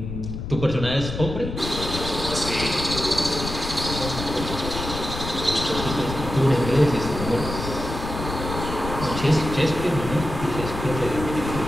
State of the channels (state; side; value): noise; left; rumble, 6 dB below the sound